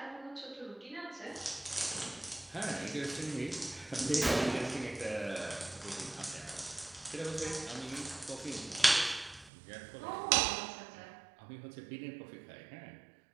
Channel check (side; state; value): left; drops out; at 9.5 s